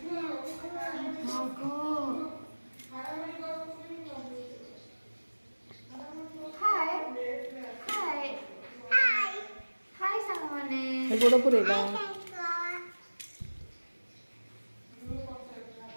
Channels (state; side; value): inverted; both; correlation -1.00